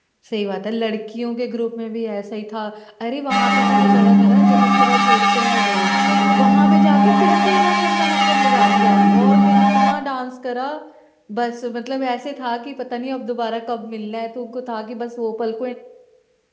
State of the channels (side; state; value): both; identical; correlation 1.00